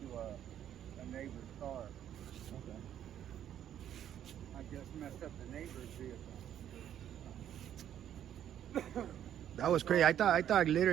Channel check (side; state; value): left; quieter; 10.4 dB